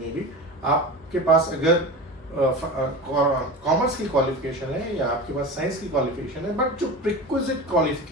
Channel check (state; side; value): normal; both; correlation 0.29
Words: भी आपके पास अगर कॉमर्स की क्वालिफिकेशन है या आपके पास साइंस की क्वालिफिकेशन है, बट जो प्रिक्विजिट